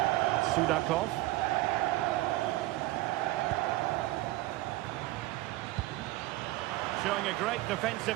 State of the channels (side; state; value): left; quieter; 18.0 dB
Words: Sudakov. Showing a great defensive